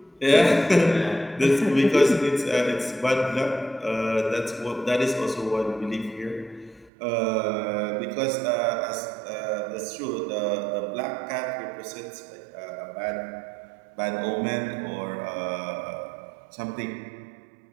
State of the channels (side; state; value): left; drops out; at 6.9 s